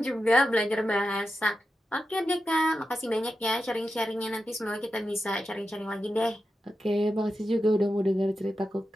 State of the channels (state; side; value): normal; both; correlation 0.90